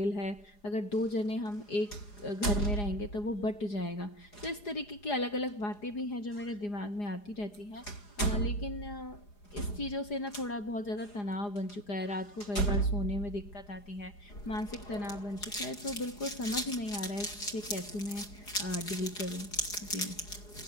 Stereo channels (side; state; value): right; late; 4.9 ms